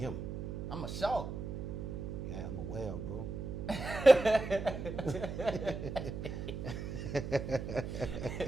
I'm a shark. Yeah, I'm a whale, bro.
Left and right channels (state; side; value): noise; right; hum, 6 dB below the sound